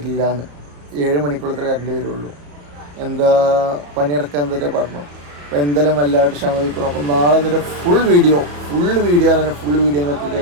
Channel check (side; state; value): left; late; 34 ms